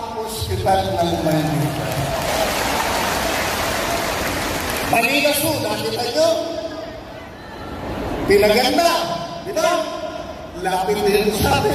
hospital ng Maynila. Manila Zoo, nakita nyo? Pinaganda, di ba? Lapit din sa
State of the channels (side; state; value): both; identical; correlation 1.00